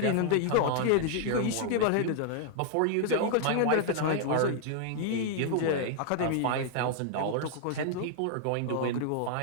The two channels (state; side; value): different; both; correlation 0.00